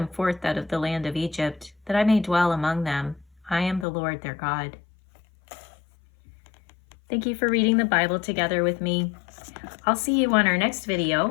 forth out of the land of Egypt, that I may dwell among them. I am the Lord their God. Thank you for reading the Bible together with me. I'll see you on our next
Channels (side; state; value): right; drops out; at 3.9 s